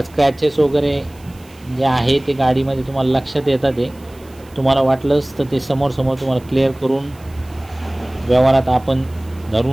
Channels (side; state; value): right; noise; hiss, 27 dB below the sound